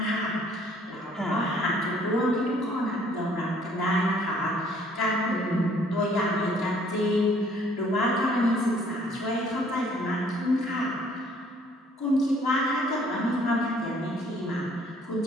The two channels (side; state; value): both; normal; correlation 0.60